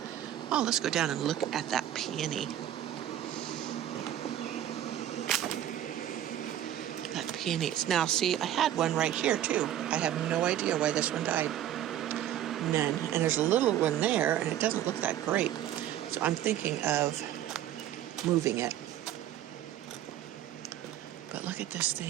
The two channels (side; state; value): left; quieter; 11.7 dB